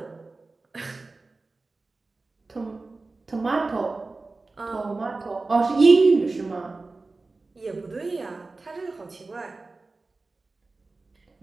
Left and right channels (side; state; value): left; quieter; 3.5 dB